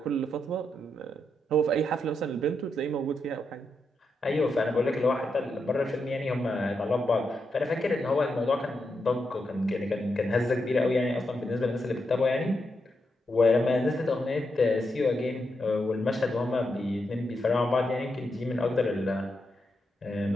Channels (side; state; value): both; normal; correlation 0.84